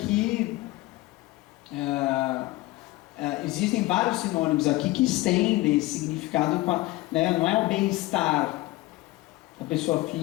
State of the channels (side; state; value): right; quieter; 19.3 dB